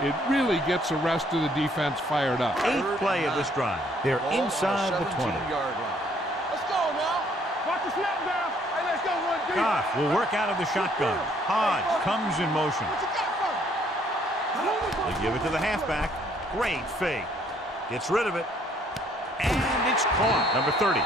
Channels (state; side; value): normal; both; correlation 0.64